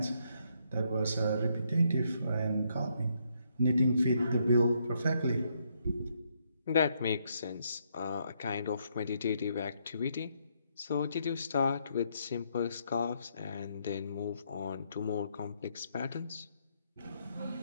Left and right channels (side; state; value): both; inverted; correlation -0.74